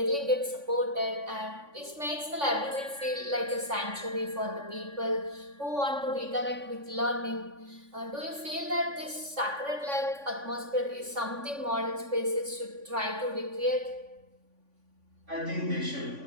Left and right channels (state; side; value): late; left; 3.5 ms